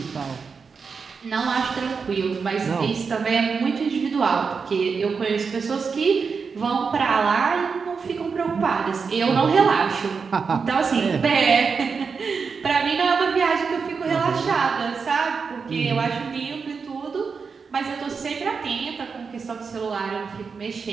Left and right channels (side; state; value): left; quieter; 5.4 dB